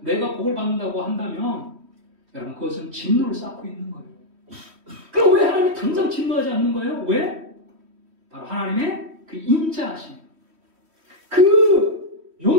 복을 받는다고 한다면 여러분, 그것은 진노를 쌓고 있는 거예요. 그럼 왜 하나님이 당장 진노하지 않는 거예요? 왜? 바로 하나님의 그 인자하심, 그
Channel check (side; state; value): left; late; 3.1 ms